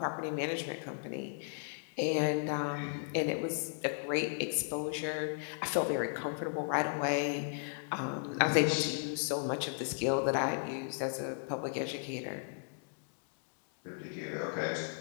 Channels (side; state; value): right; silent; digital silence